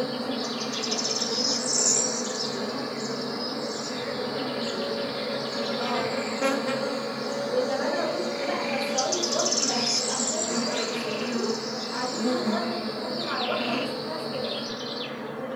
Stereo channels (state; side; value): identical; both; correlation 1.00